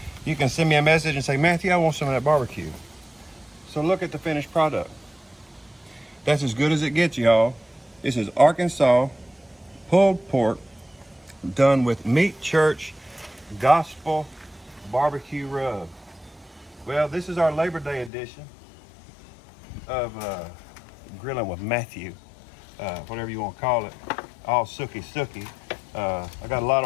you can send me a message and say, Matthew, I want some of that barbecue. So look at the finished product. That's as good as it gets, y'all. This is Arkansas pulled pork done with Meat Church Gospel barbecue rub. Well, this is our Labor Day edition of Grilling with Matthew, whatever you want to call it, all sooky. I got a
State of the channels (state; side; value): drops out; right; at 18.1 s